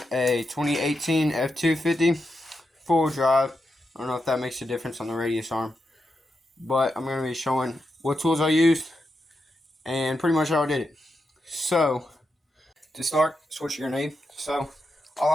a 2018 F250 full drive. I don't know if that makes a difference on the radius arm, but I'm going to be showing what tools I used and pretty much how I did it. So, to start, that's what you're going to need. So,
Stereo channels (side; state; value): both; normal; correlation 0.86